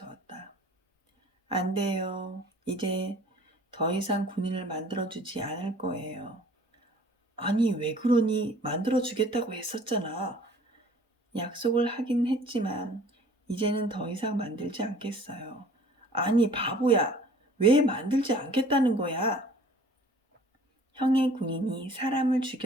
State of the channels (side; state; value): both; normal; correlation 0.51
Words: 안 돼요. 이제 더 이상 군인을 만들어주지 않을 거예요. 아니, 왜 그러니? 만들어주겠다고 했었잖아. 약속을 하긴 했지만 이제는 더 이상 만들지 않겠어요. 아니, 바보야. 왜 만들지 않겠다는 거야? 형의 군인이 사람을